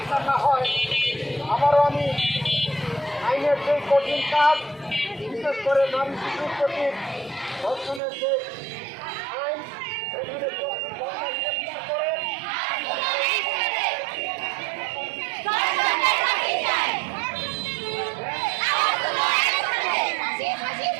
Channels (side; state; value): left; drops out; at 8.0 s